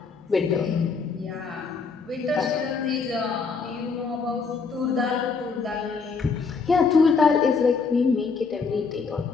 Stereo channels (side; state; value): right; quieter; 5.0 dB